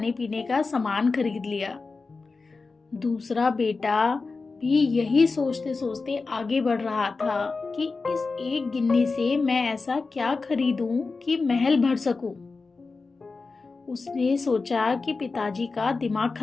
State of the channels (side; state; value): right; quieter; 4.1 dB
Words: पीने का सामान खरीद लिया। दूसरा बेटा भी यही सोचते सोचते आगे बढ़ रहा था कि इस एक गिन्नी से मैं ऐसा क्या खरीदूं कि महल भर सकूं। उसने सोचा कि पिताजी का दिमाग